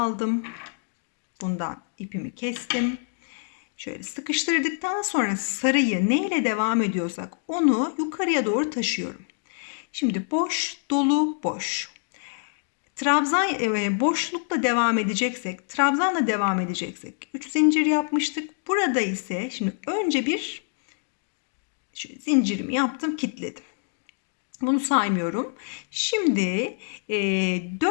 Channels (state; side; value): silent; right; 60 dB below the other